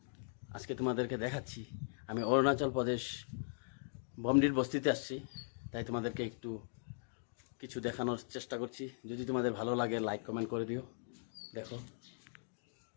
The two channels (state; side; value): silent; right; digital silence